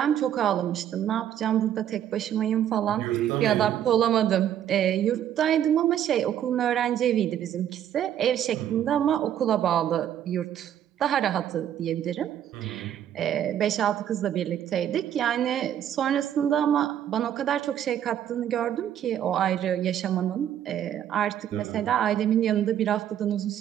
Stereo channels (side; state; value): left; quieter; 10.4 dB